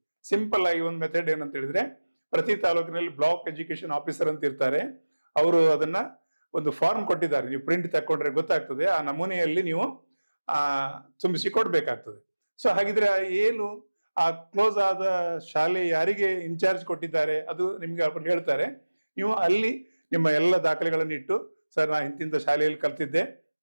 ಸಿಂಪಲ್ ಆಗಿ ಒಂದು ಮೆಥಡ್ ಏನಂತ ಹೇಳಿದ್ರೆ, ಪ್ರತಿ ತಾಲೂಕಿನಲ್ಲಿ ಬ್ಲಾಕ್ ಎಜುಕೇಶನ್ ಆಫೀಸರ್ ಅಂತ ಇರ್ತಾರೆ, ಅವರು ಅದನ್ನ ಒಂದು ಫಾರ್ಮ್ ಕೊಟ್ಟಿದ್ದಾರೆ, ನೀವು ಪ್ರಿಂಟ್ ತಕೊಂಡ್ರೆ ಗೊತ್ತಾಗ್ತದೆ, ಆ ನಮೂನೆಯಲ್ಲಿ ನೀವು ತುಂಬಿಸಿ ಕೊಡ್ಬೇಕಾಗ್ತದೆ. ಸೊ ಹಾಗಿದ್ರೆ ಏನು ಆ ಕ್ಲೋಸ್ ಆದ ಶಾಲೆ ಯಾರಿಗೆ ಇನ್ಚಾರ್ಜ್ ಕೊಟ್ಟಿದ್ದಾರೆ ಅದು ನಿಮ್ಗೆ ಅವ್ರು ಹೇಳ್ತಾರೆ. ನೀವು ಅಲ್ಲಿ ನಿಮ್ಮ ಎಲ್ಲ ದಾಖಲೆಗಳನ್ನು ಇಟ್ಟು, ಸರ್ ನಾ ಇಂತಿಂತ ಶಾಲೆಯಲ್ಲಿ ಕಲ್ತಿದ್ದೆ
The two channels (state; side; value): inverted; both; correlation -1.00